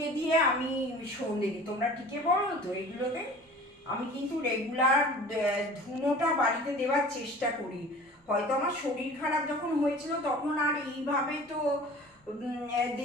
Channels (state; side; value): normal; both; correlation 0.43